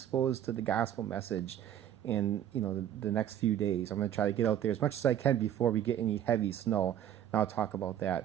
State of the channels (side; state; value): left; quieter; 10.7 dB